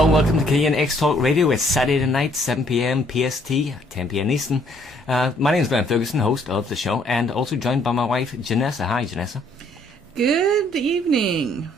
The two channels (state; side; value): normal; both; correlation 0.65